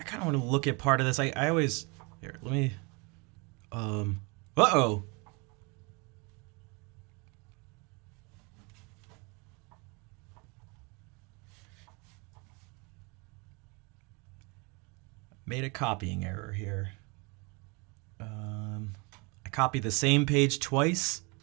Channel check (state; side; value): quieter; left; 30.2 dB